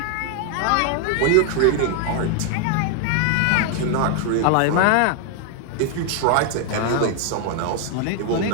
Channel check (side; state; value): both; different; correlation 0.00